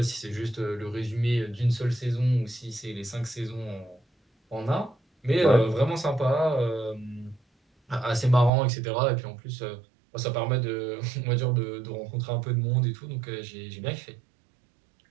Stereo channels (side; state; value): left; drops out; at 8.5 s